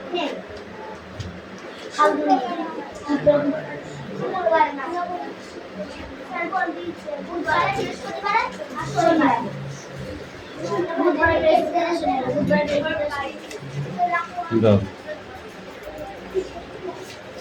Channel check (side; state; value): both; identical; correlation 1.00